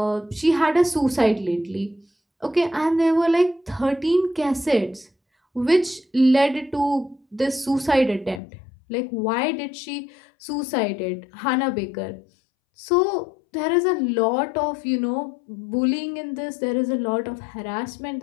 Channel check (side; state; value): right; drops out; at 8.4 s